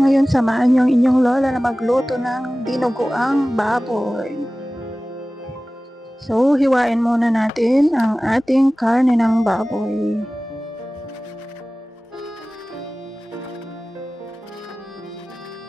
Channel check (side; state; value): both; normal; correlation 0.97